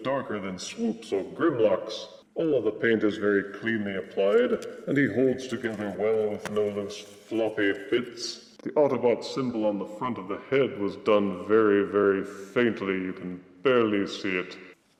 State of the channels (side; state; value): both; identical; correlation 1.00